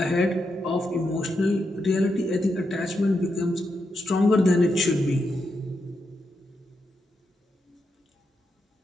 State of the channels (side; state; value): both; normal; correlation 0.84